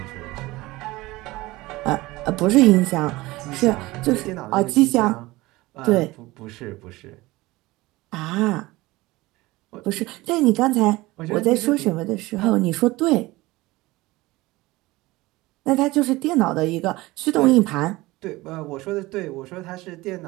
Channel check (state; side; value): quieter; left; 20.0 dB